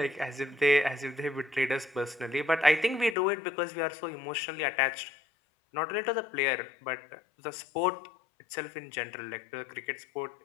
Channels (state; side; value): drops out; right; at 3.2 s